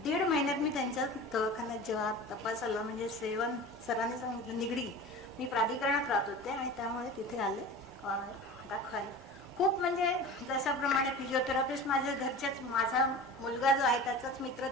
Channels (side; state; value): both; normal; correlation 0.35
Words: महिन्यात मी त्यांच्या दवाखान्यात जेव्हा तपासाला म्हणजे सरांनी सांगितलं निगडी, मी प्राधिकरणात राहत होते आणि त्यामुळे तिथे आले दाखवायला. खूप म्हणजे जशाप्रमाणे फिजिओथेरपिस्ट माझ्या घरच्याच, माझा मुलगा जो आहे त्याचाच मित्र